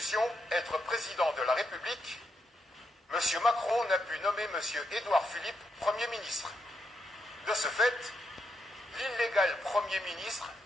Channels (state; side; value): normal; both; correlation 0.81